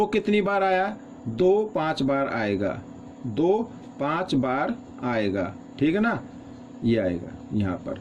कितनी बार आया, 2 5 बार आएगा, 2 5 बार आएगा, ठीक है ना, ये आएगा यहाँ पर,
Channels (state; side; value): identical; both; correlation 1.00